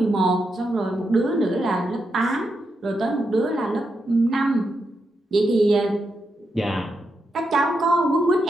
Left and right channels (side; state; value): both; normal; correlation 0.84